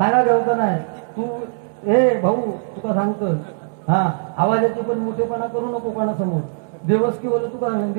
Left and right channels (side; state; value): left; silent; 65 dB below the other